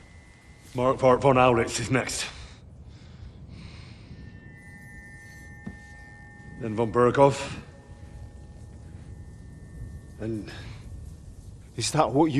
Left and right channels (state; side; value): identical; both; correlation 1.00